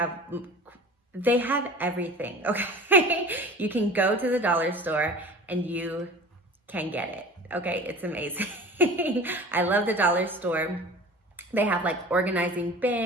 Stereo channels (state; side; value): normal; both; correlation 0.40